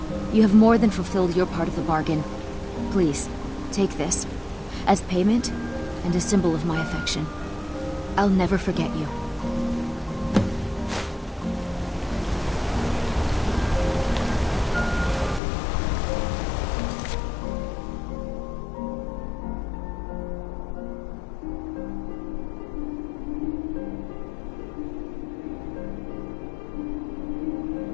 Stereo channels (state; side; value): drops out; right; at 15.4 s